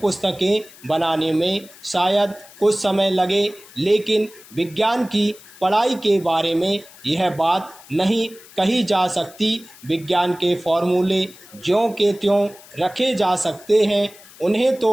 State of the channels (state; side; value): noise; left; hiss, 22 dB below the sound